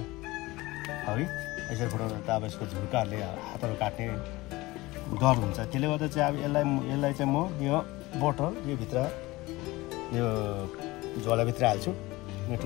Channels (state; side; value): quieter; right; 20.5 dB